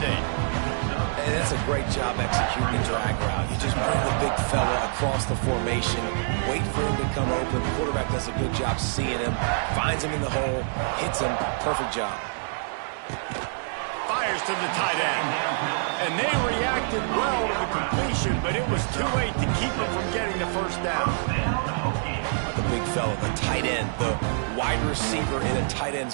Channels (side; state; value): left; silent; digital silence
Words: And that's a great job executing the drag route. You just bring the big fella across the formation, wait for him to come open. The quarterback does a good job seeing him, finds him in the hole, hits him. Perfect job. Fires to the tight end. And they reacted well to the completion, but it was too late to keep him from getting the first down. The big fella, the tight end, the wide receiver in a tight